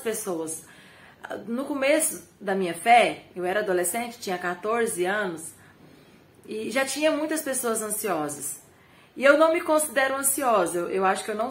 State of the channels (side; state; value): both; identical; correlation 1.00